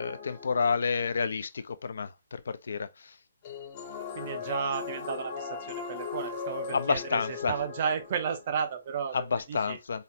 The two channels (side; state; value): both; inverted; correlation -0.70